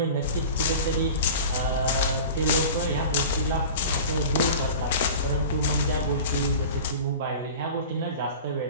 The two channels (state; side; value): inverted; both; correlation -0.36